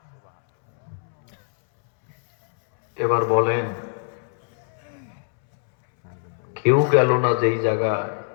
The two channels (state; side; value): silent; right; 64 dB below the other